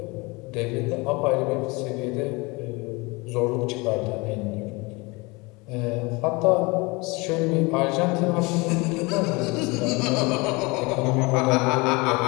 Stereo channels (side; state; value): right; quieter; 25.9 dB